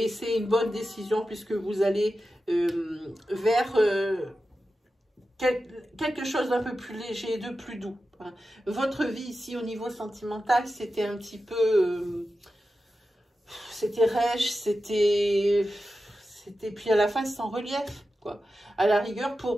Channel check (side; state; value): both; normal; correlation 0.92